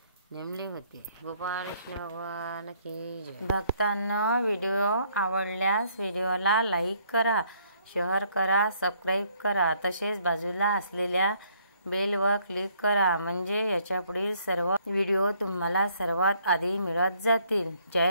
नेमले होते. गोपाळ कृष्ण भगवान की जय. भक्तांनो, व्हिडिओ आवडल्यास व्हिडिओला लाईक करा, शेअर करा, सबस्क्राईब करा. तसेच बाजूला असलेल्या बेलवर क्लिक करा, म्हणजे याच्यापुढील सर्व व्हिडिओ तुम्हाला सर्वात आधी मिळत जातील.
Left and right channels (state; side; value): inverted; both; correlation -0.66